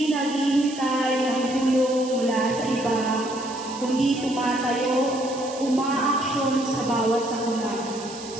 naghihintay ng tulong mula sa iba, kundi tumatayo, umaaksyon sa bawat sakuna,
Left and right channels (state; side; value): noise; right; hiss, 14 dB below the sound